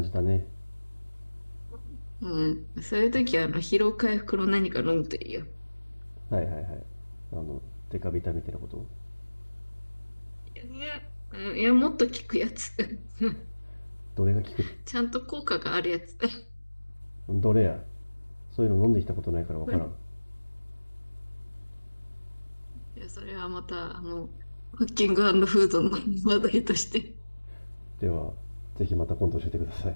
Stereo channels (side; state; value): both; inverted; correlation -1.00